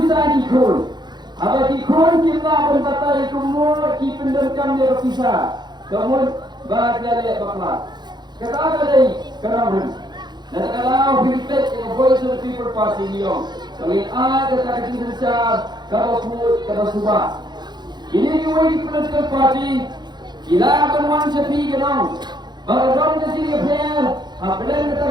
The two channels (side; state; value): left; late; 0.21 ms